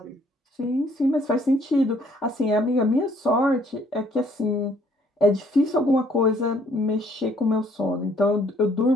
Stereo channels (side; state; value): both; normal; correlation 0.63